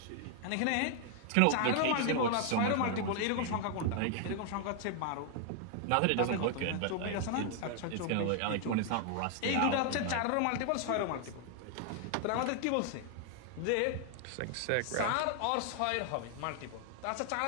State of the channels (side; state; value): both; different; correlation 0.00